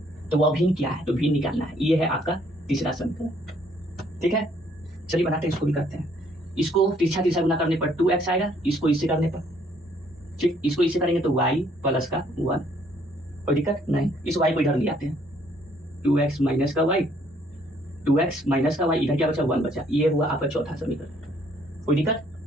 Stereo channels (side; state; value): both; normal; correlation 0.64